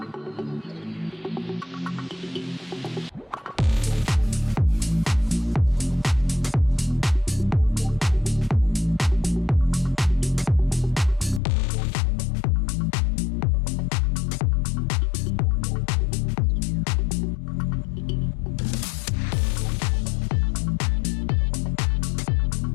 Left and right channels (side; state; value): right; drops out; at 11.4 s